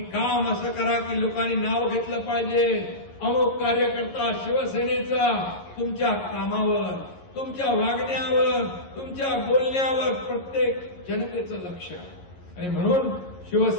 असं करा की लोकांनी नाव घेतलं पाहिजे, अमुक कार्यकर्ता शिवसेनेचा. तुमच्या कामावर, तुमच्या वागण्यावर, तुमच्या बोलण्यावर प्रत्येक जनतेचं लक्ष आहे. आणि म्हणून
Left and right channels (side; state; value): right; late; 11 ms